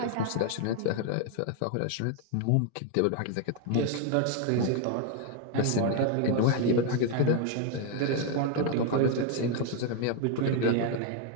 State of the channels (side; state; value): both; different; correlation 0.01